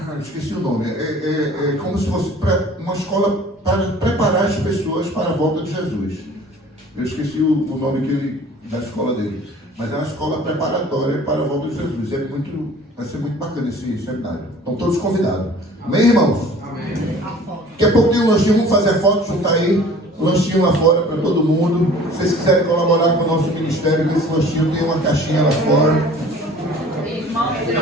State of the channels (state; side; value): normal; both; correlation 0.47